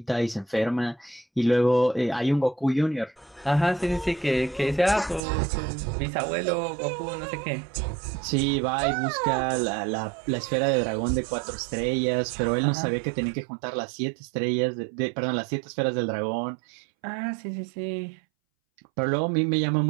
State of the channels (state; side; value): drops out; left; at 5.2 s